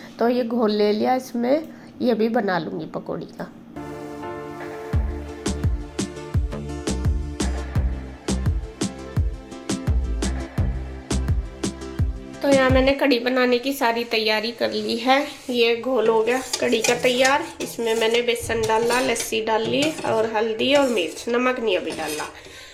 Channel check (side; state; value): both; identical; correlation 1.00